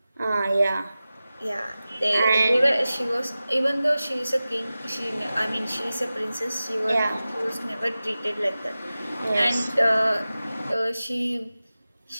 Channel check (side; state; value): both; inverted; correlation -0.95